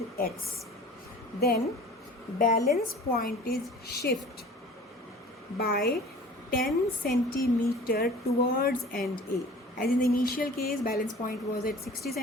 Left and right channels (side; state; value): both; normal; correlation 0.44